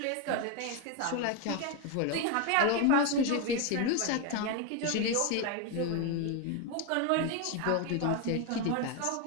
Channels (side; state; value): both; different; correlation 0.02